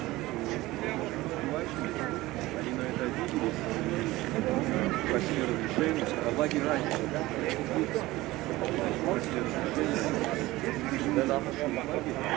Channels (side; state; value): left; quieter; 18.7 dB